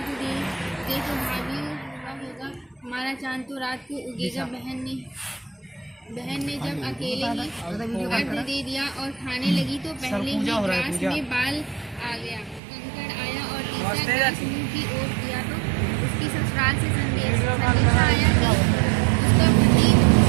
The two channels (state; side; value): drops out; left; at 12.6 s